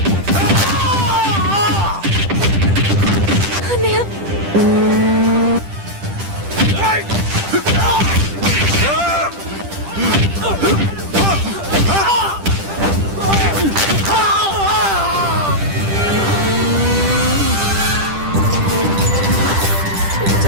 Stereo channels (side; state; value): left; late; 10 ms